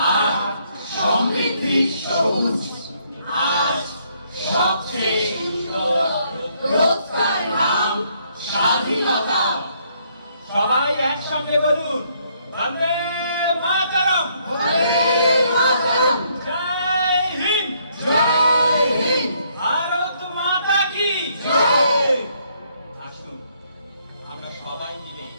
আর সমৃদ্ধির সবুজ। আজ সবচেয়ে সুন্দর রোজকার নাম স্বাধীনতা। সবাই একসঙ্গে বলুন, বন্দে মাতরম। বন্দে মাতরম। জয় হিন্দ।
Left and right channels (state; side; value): inverted; both; correlation -0.69